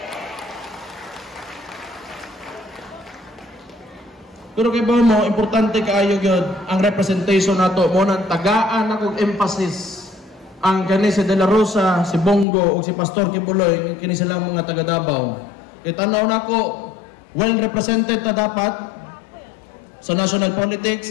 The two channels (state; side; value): drops out; right; at 12.5 s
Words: Pero kay ba mo, importante kaayo gyud ang representation nato mo nang tagaan akong emphasis ang kani si De La Rosa, si Bongo ug si Pastor Kibuloy kini sila mga taga Davao. Itanaw nako well represented ta dapat sa national